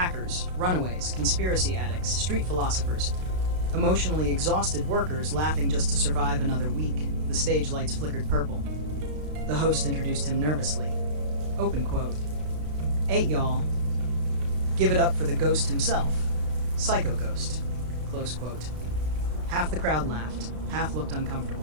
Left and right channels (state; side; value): late; left; 33 ms